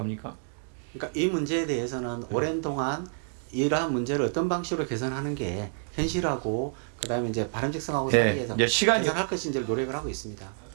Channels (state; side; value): silent; left; digital silence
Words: 그러니까 이 문제에 대해서는 오랜 동안 이러한 문제를 어떤 방식으로 개선하는 게 현실하고 그다음에 이제 바람직성하고 네, 사이에서 이제 시간이 개선할 것인지를 노력을 하고 있습니다.